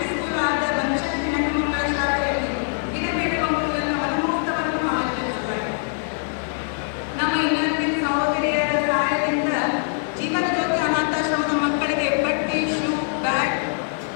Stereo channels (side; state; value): right; silent; digital silence